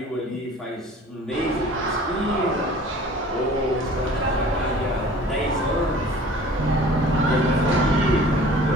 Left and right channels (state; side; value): normal; both; correlation 0.47